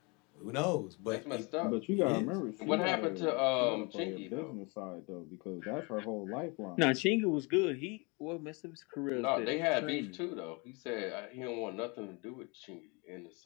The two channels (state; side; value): quieter; right; 29.8 dB